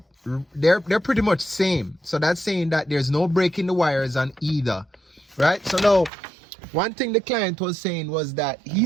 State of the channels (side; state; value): left; drops out; at 6.1 s